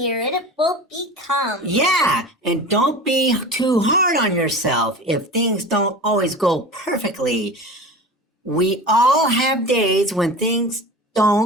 it will become. Yeah, and don't be too hard on yourself if things don't always go perfectly. We all have days when things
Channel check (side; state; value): both; normal; correlation 0.33